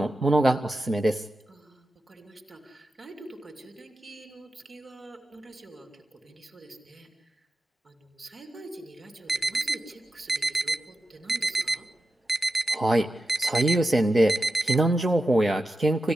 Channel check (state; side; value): normal; both; correlation 0.90